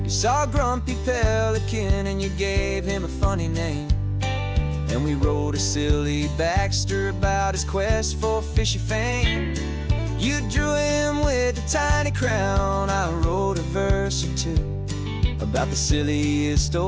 You saw a grumpy pelican and you gave him a funny name, and we wrote a silly Baxter about his quest for fishy fame. You drew him with a tiny crown, I wrote a verse or two about the silliest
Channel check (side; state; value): both; identical; correlation 1.00